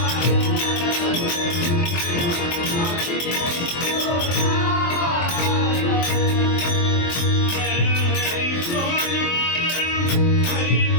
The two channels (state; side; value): late; right; 23 ms